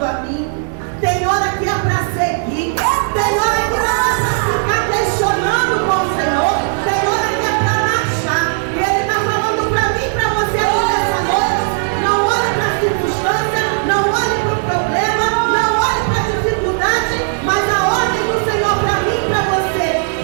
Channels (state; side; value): silent; left; 63 dB below the other